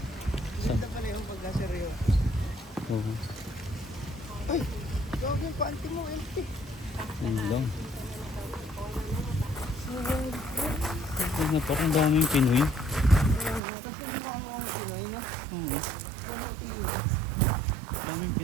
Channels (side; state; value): left; drops out; at 13.6 s